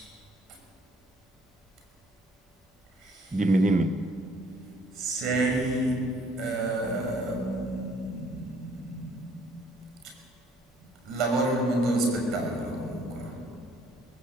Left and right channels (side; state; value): both; normal; correlation 0.62